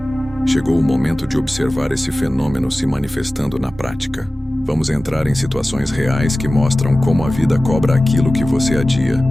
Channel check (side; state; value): both; normal; correlation 0.97